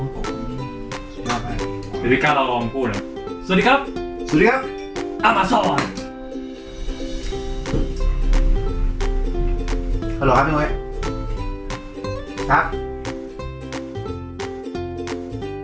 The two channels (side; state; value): both; identical; correlation 1.00